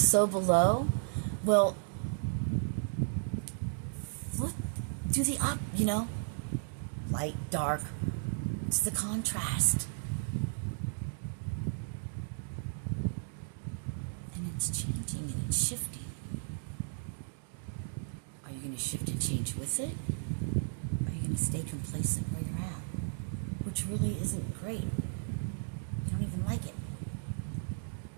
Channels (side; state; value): left; silent; digital silence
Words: below. Well, flip, do the up, you know, light, dark. It's the contrast. And it's changing and it's shifting. Are you going to shift and change with it? Or are you going to stay complacent where you're at? Which really isn't great. You don't even like it.